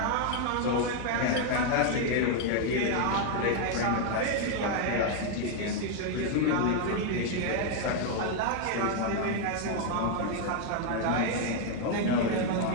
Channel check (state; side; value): different; both; correlation 0.00